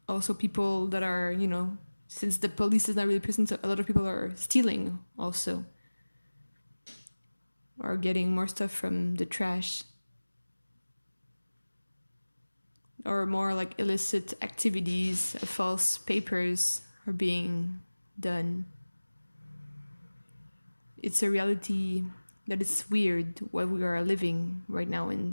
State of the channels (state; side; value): inverted; both; correlation -1.00